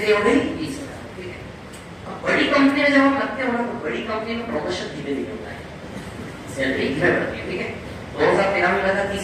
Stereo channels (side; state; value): both; identical; correlation 1.00